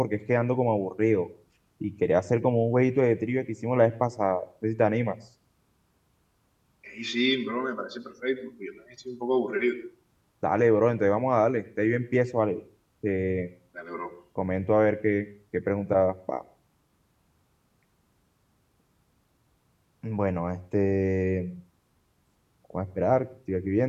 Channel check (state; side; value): identical; both; correlation 1.00